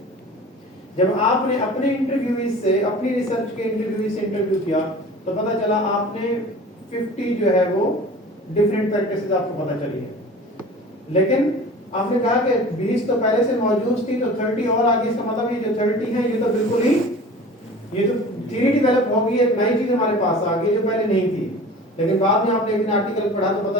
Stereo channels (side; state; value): both; normal; correlation 0.40